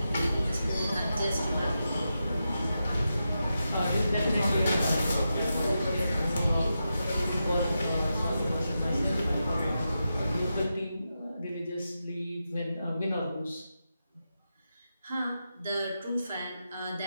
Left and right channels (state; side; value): inverted; both; correlation -0.88